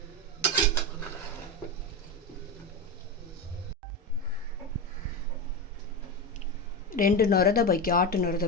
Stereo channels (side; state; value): both; normal; correlation 0.17